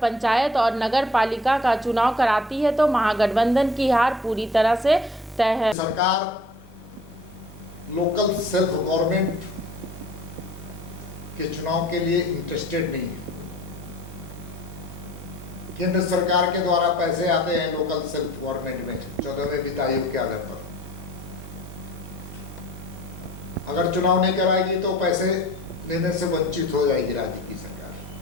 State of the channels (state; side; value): normal; both; correlation 0.48